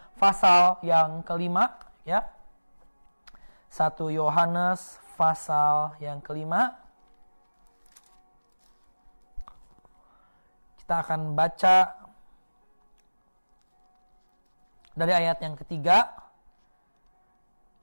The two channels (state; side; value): inverted; both; correlation -1.00